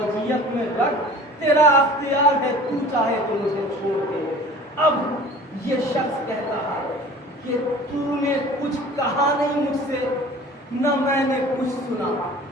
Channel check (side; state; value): both; normal; correlation 0.44